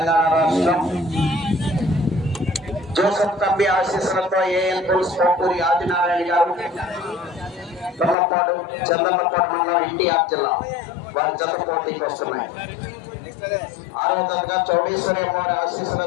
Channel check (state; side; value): drops out; right; at 8.2 s